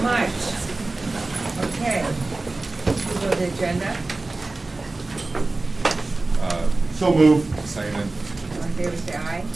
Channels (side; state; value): left; quieter; 3.2 dB